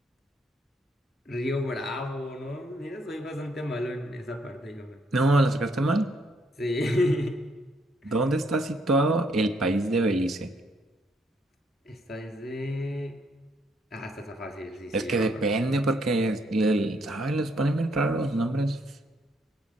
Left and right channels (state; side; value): normal; both; correlation 0.71